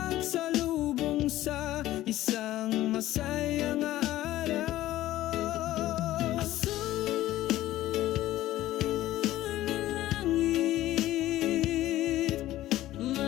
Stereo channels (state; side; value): quieter; right; 14.9 dB